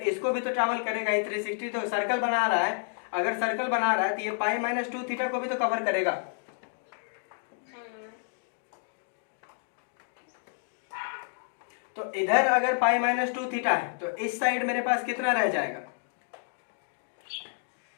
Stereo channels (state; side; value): silent; right; digital silence